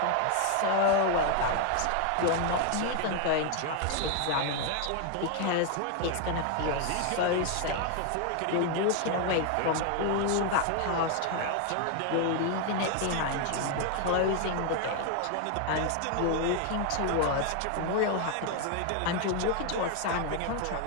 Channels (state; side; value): different; both; correlation 0.00